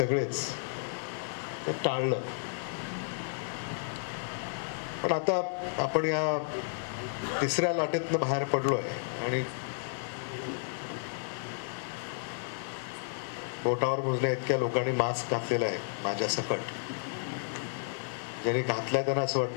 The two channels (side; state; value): right; silent; digital silence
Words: टाळलं. पण आता आपण या तिसऱ्या लाटेतनं बाहेर पडलोय आणि बोटावर मोजण्या इतक्या लोकांनी मास्क घातलेला आहे माझ्या सकट. ज्यांनी घातलाय त्यांना असं